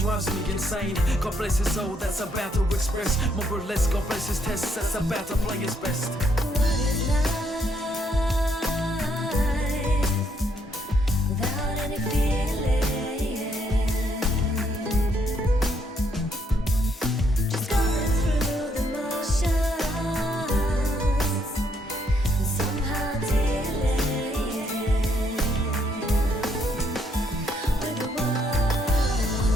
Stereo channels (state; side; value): normal; both; correlation 0.72